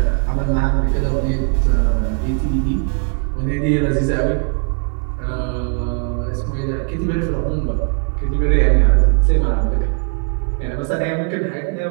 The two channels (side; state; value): left; quieter; 39.5 dB